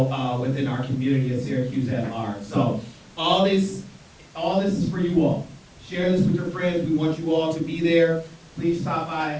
within our community of Syracuse at large. So all this is for you all. Share this with your friends. We want you all to be there. Please stop by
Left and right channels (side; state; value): both; identical; correlation 1.00